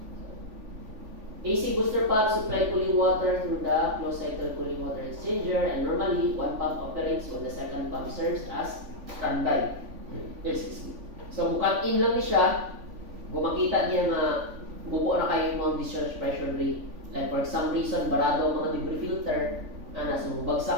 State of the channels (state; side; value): late; left; 3.5 ms